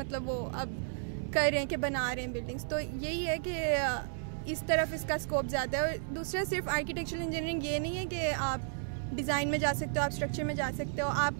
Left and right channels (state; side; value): silent; left; digital silence